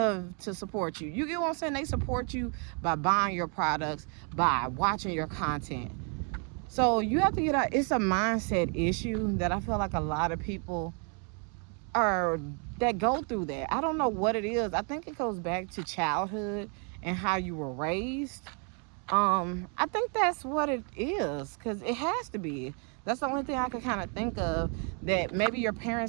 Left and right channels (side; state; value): left; quieter; 38.7 dB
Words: to support you. You get what I'm saying? They support you by buying your products, by watching your content. So you have to get out. It's a mindset issue that I feel like a lot of people that go through that. I don't know what it is. I think it goes back to childhood and how you were raised. I think that's what it is, because it has to be. That's the only thing I can kind of think of, that maybe your